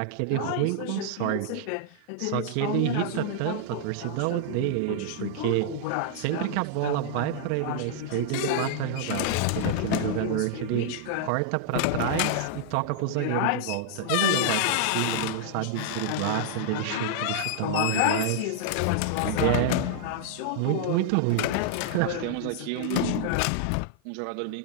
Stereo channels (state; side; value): different; both; correlation -0.01